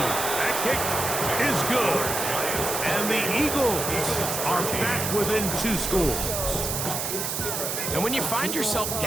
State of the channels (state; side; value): noise; right; hiss, 2 dB below the sound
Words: That kick is good. And the Eagles are back within 2 scores. And when you find yourself